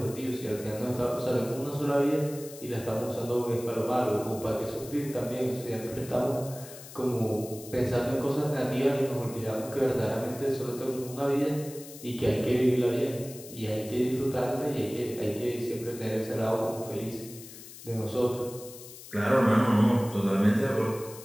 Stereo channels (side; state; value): left; noise; hiss, 16 dB below the sound